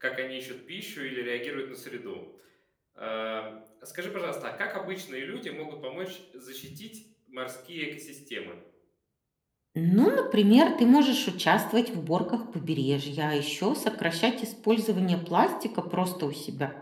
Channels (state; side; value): identical; both; correlation 1.00